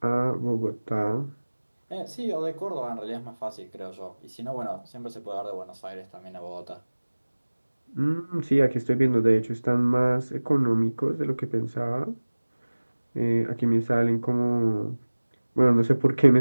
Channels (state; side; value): inverted; both; correlation -1.00